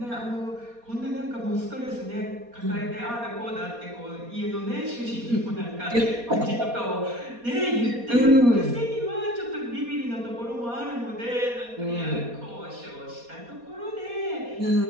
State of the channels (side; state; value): left; late; 4.2 ms